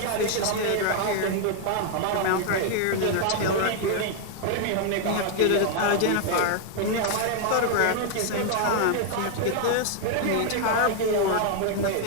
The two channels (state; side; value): different; both; correlation 0.00